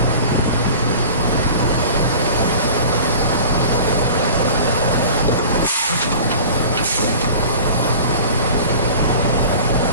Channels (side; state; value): both; inverted; correlation -0.40